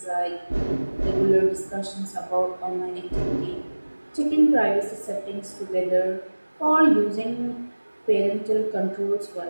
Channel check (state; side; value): inverted; both; correlation -1.00